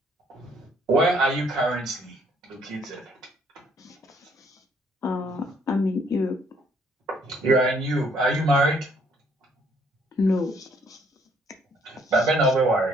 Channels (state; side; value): normal; both; correlation 0.65